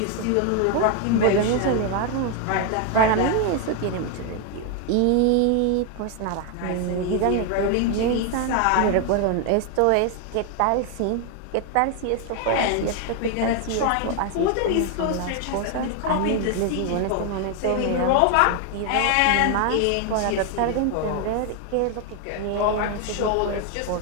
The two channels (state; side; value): different; both; correlation 0.01